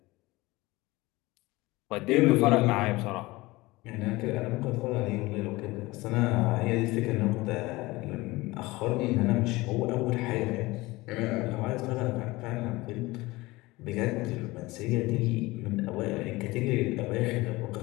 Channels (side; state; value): right; quieter; 20.9 dB